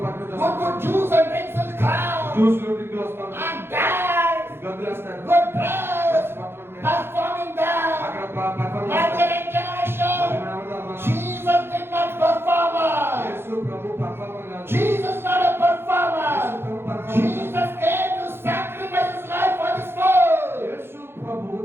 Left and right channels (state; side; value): late; left; 0.11 ms